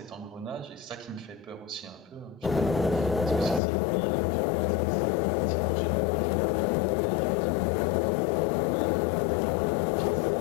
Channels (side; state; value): right; drops out; at 3.6 s